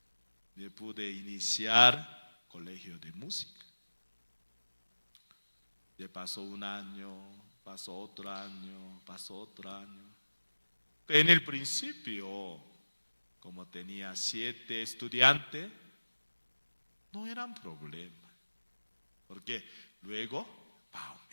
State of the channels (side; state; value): both; inverted; correlation -1.00